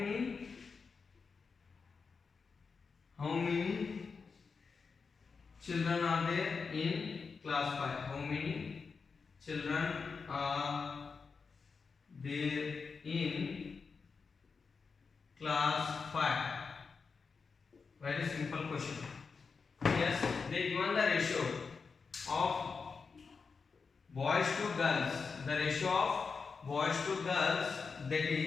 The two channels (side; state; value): right; quieter; 5.1 dB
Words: children are there in class 5? How many children are there in class 5? Very simple question. Yes, they given the ratio of boys to girls. The ratio of boys to girls, that